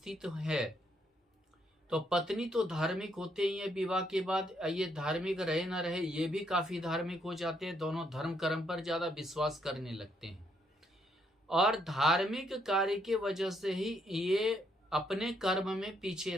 है, तो पत्नी तो धार्मिक होते ही है विवाह के बाद। ये धार्मिक रहे ना रहे, ये भी काफी धार्मिक हो जाते हैं। दोनों धर्म कर्म पर ज्यादा विश्वास करने लगते हैं और धार्मिक कार्य की वजह से ही ये अपने कर्म में पीछे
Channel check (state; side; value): normal; both; correlation 0.73